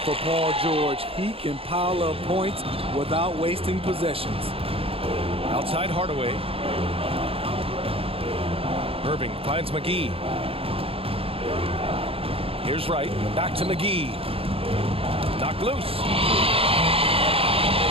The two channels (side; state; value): left; late; 0.27 ms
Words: for Paul George. He can pile up points without wasting possessions. Outside Hardaway. Irving finds McGee. Here's Wright. Back to McGee. Knocked loose.